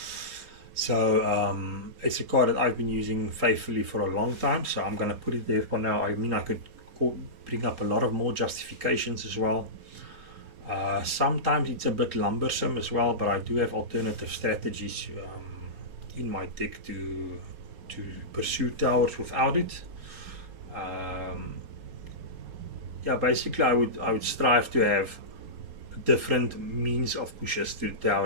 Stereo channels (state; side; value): late; left; 4.2 ms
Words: So it's a card that I've been using faithfully for a long time, so I'm going to put it there for now. I mean, I could bring up a lot of more justifications as well. Sometimes it's a bit lumbersome as well, but I do have alternative strategies in my deck to pursue towers without it. Yeah, basically I would strive to have different means of pushes to the